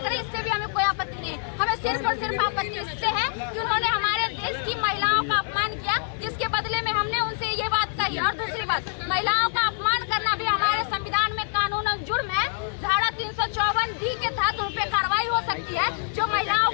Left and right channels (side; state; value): right; silent; 61 dB below the other